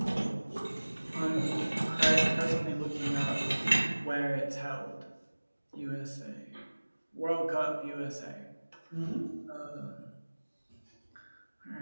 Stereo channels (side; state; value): both; inverted; correlation -1.00